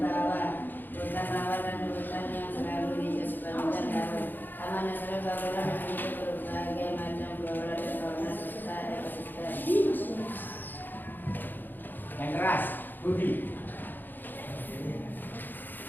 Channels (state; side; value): late; right; 0.090 ms